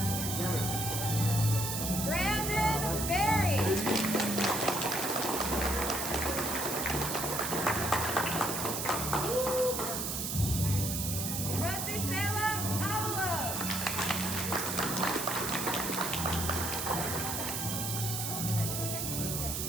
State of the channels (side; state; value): right; noise; hiss, 2 dB below the sound